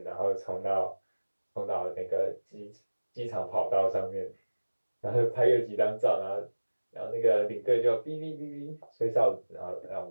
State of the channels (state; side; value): inverted; both; correlation -1.00